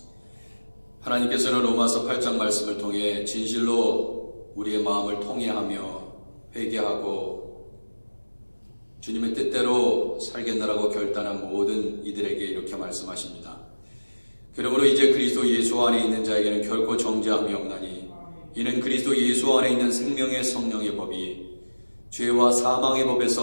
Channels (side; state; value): both; inverted; correlation -1.00